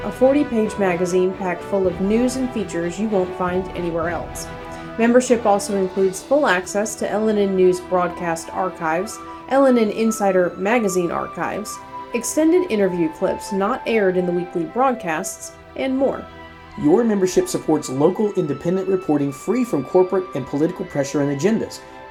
a 40-page magazine packed full of news and features you won't find anywhere else. Membership also includes full access to LNN News broadcast archives, LNN Insider magazine archives, extended interview clips not aired in the weekly broadcasts, and more. Your membership supports local independent reporting free from corporate and political pressure and agendas.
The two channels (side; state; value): both; identical; correlation 1.00